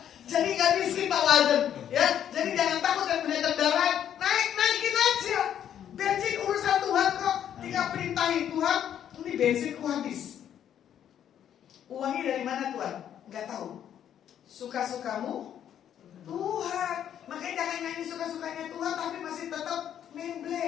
Jadi gak miskin Pak Walden, ya. Jadi jangan takut dan punya kendaraan, naikin aja. Bensin urusan Tuhan kok. Tinggal perintahin Tuhan, ini bensinku habis. Uangnya dari mana Tuhan? Gak tahu. Suka-sukamu Tuhan. Makanya jangan nyanyi suka-sukanya Tuhan tapi masih tetap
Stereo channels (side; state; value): right; quieter; 9.9 dB